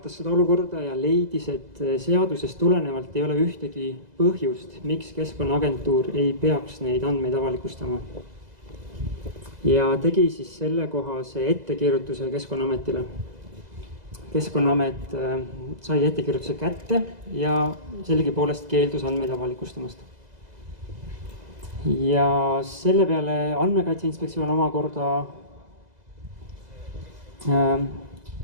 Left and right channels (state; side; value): late; left; 2.0 ms